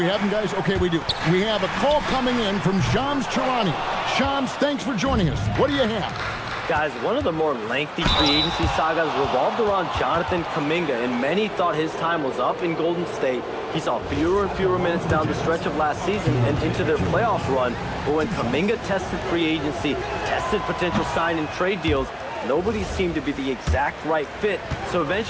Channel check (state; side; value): identical; both; correlation 1.00